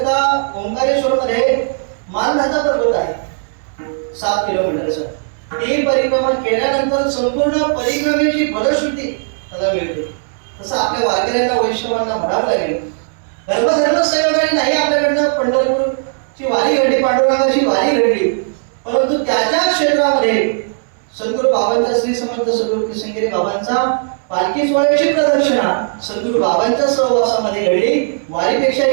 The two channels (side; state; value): left; silent; digital silence